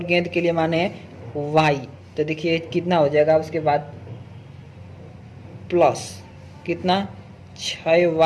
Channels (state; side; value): identical; both; correlation 1.00